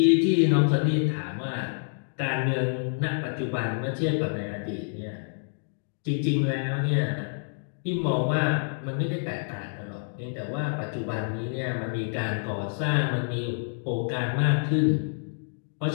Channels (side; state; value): right; silent; digital silence